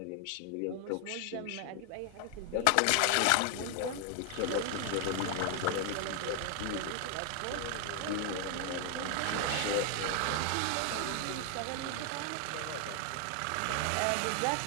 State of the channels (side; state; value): both; different; correlation 0.00